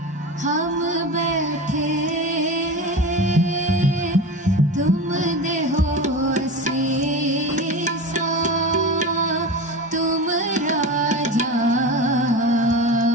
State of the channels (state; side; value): normal; both; correlation 0.28